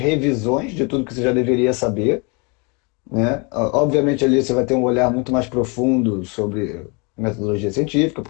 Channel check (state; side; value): quieter; right; 31.1 dB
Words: de tudo que você já deveria saber, né? Obviamente ali você vai ter um olhar muito mais profundo sobre metodologia científica,